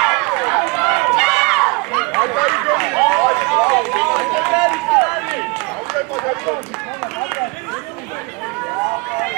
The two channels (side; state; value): left; quieter; 27.8 dB